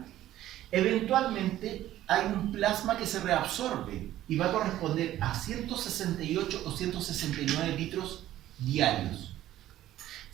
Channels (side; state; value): left; quieter; 13.6 dB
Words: Eventualmente hay un plasma que se reabsorbe y va a corresponder a 168 o 169 litros diarios.